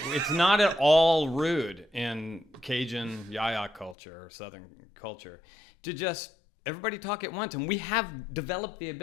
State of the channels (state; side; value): drops out; right; at 4.0 s